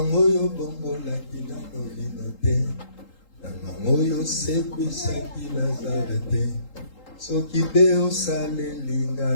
yo bongo la kina no vinote. Tamango yo sekwisa kilazarete. Soki beo sale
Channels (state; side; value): late; right; 3.8 ms